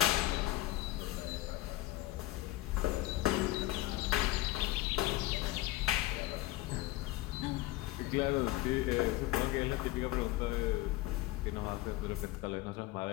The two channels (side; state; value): right; quieter; 17.2 dB